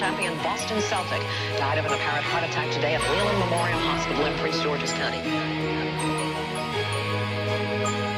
Boston Celtic died of an apparent heart attack today at Leland Memorial Hospital in Prince George's County.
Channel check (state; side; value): identical; both; correlation 1.00